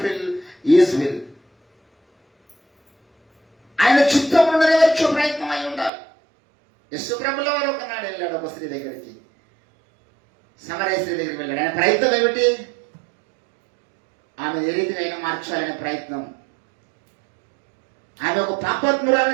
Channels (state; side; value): drops out; left; at 5.9 s